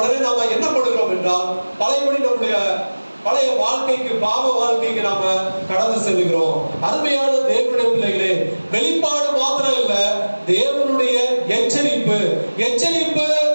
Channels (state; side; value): inverted; both; correlation -1.00